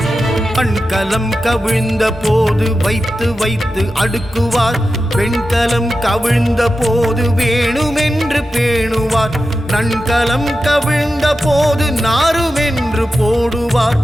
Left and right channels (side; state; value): both; normal; correlation 0.92